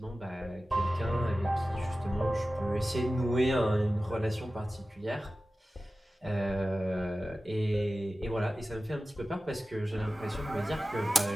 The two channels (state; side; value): normal; both; correlation 0.95